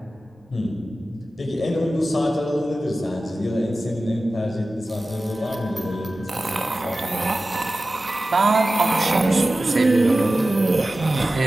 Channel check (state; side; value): normal; both; correlation 0.95